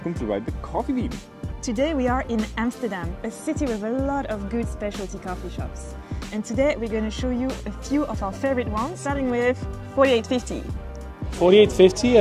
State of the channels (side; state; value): both; identical; correlation 1.00